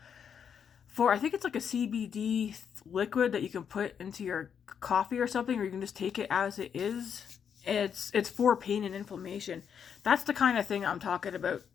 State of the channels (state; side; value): quieter; right; 7.6 dB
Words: for, I think it's like a CBD liquid that you can put into your coffee or something, or you can just take it as it is. It's for pain and inflammation. That's the kind of thing I'm talking about.